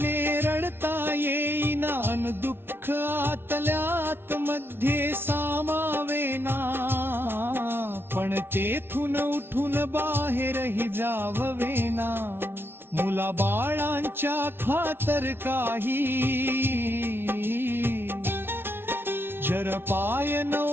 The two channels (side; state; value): left; late; 0.11 ms